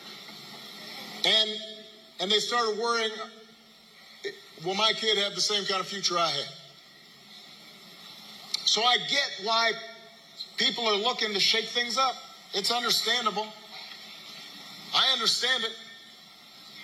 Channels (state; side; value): identical; both; correlation 1.00